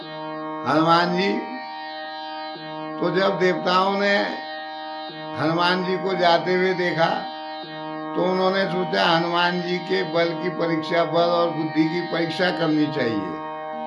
हनुमान जी तो जब देवताओं ने हनुमान जी को जाते हुए देखा तो उन्होंने सोचा हनुमान जी के बल की परीक्षा, बल और बुद्धि की परीक्षा करनी चाहिए।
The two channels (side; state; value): both; identical; correlation 1.00